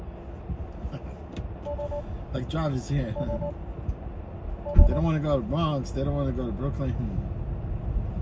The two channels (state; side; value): identical; both; correlation 1.00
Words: Like drivers here. They don't want to go to Bronx. They don't want to go to Brooklyn.